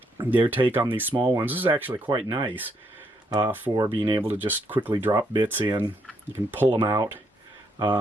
their take on these small ones. This is actually quite nice for being able to just quickly drop bits in. You can pull them out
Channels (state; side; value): normal; both; correlation 0.75